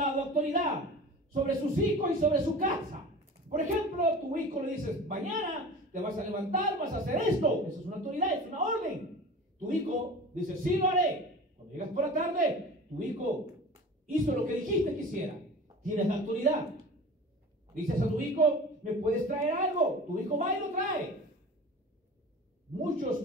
autoridad sobre sus hijos y sobre su casa. Por ejemplo, tu hijo le dices, mañana te vas a levantar, vas a hacer esto. Eso es una autoridad, es una orden. Tu hijo dice, sí lo haré. Cuando llegas por la tarde, tu hijo hizo lo que dijiste que hiciera. Tienes la autoridad. Dices a tu hijo, ¿me puedes traer algo? Tu hijo va y lo trae.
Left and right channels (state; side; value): normal; both; correlation 0.37